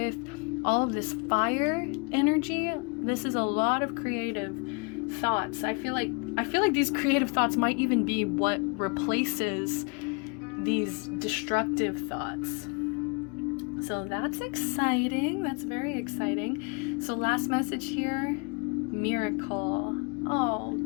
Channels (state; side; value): quieter; right; 32.1 dB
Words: all of this fire energy. This is a lot of creative thoughts. I feel like these creative thoughts might even be what replaces these destructive thoughts. So that's exciting. That's very exciting. So last message here, miracle. Oh,